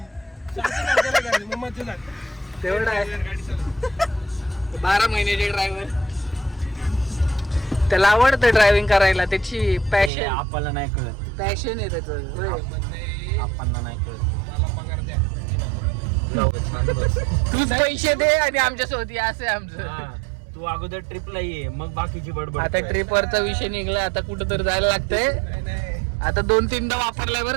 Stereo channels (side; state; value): left; drops out; at 10.1 s